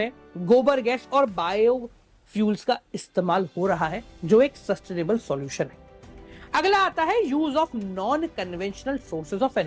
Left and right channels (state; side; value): identical; both; correlation 1.00